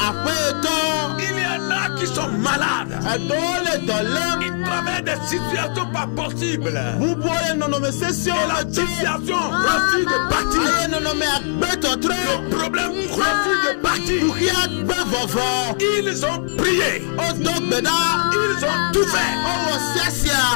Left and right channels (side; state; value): right; silent; 64 dB below the other